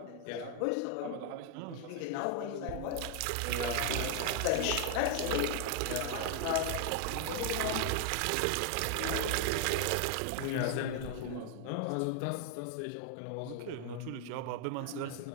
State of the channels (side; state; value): both; different; correlation 0.00